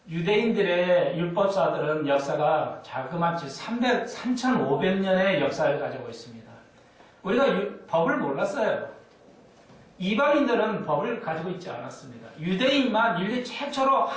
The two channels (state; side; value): identical; both; correlation 1.00